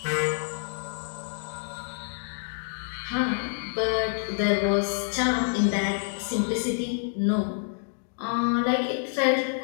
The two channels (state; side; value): silent; right; digital silence